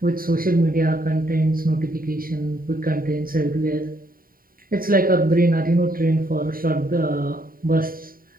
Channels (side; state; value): left; late; 0.42 ms